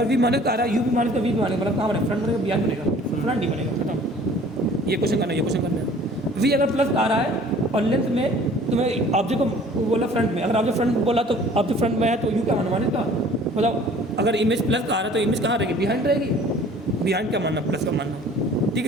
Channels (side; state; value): both; normal; correlation 0.50